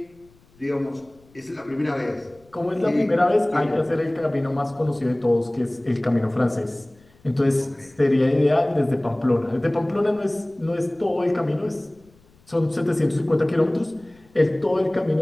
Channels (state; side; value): noise; left; rumble, 30 dB below the sound